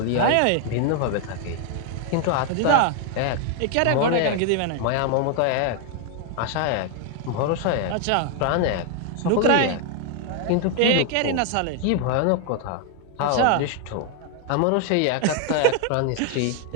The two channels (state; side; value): different; both; correlation 0.00